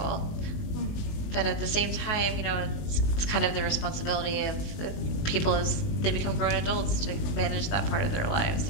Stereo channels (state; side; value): late; right; 19 ms